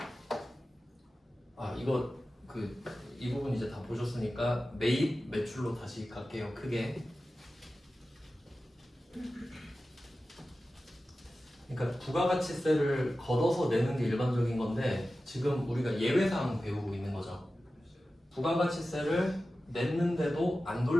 이 부분 이제 다 보셨으니까 매입 매출로 다시 갈게요. 크게. 그러니까 부가가치세를 걷어서 내는 게 일반적인 건데 지금 우리가 예외사항 배우고 있는 거죠. 부가가치세를 냈는데도 안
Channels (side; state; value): both; normal; correlation 0.94